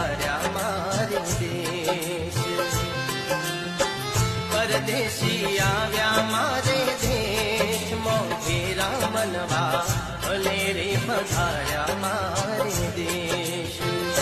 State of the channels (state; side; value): identical; both; correlation 1.00